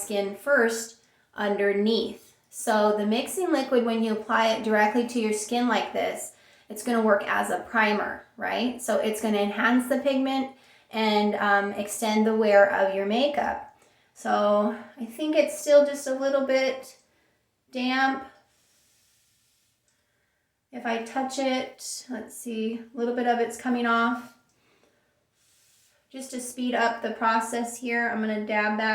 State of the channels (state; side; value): identical; both; correlation 1.00